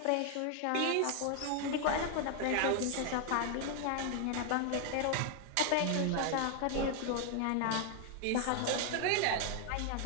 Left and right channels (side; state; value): both; different; correlation 0.00